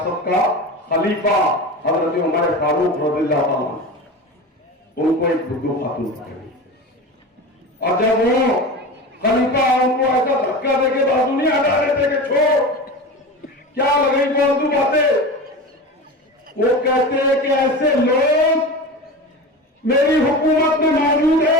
का खलीफा हजरत उमर फारूक रज़ियल्लाहु अन्हु, उनको एक बुद्दू खातून पकड़ी। और जब वो खलीफा उनको ऐसा धक्का देके बाजू नहीं हटा रहे थे कि छोड़, क्या लगी फालतू बातें, वो कहते हैं कि ऐसे लोग मेरी हुकूमत में मौजूद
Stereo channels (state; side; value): normal; both; correlation 0.29